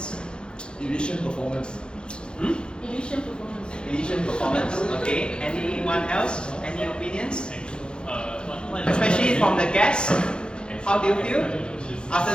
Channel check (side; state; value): right; late; 0.051 ms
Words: Illusion performance. Illusion performance. Okay. Anyone else? Any opinions? Especially from the guests. How do you feel after